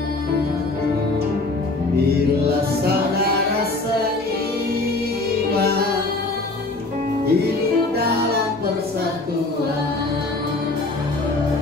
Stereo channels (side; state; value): right; quieter; 3.1 dB